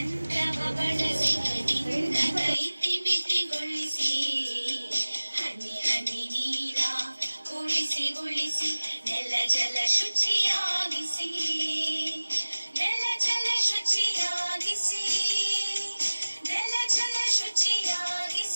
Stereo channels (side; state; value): both; inverted; correlation -1.00